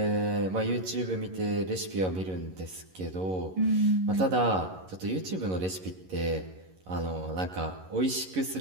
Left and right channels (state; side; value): late; left; 11 ms